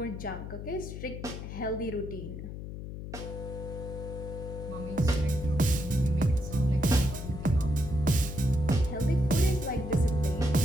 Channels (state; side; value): noise; left; hum, 8 dB below the sound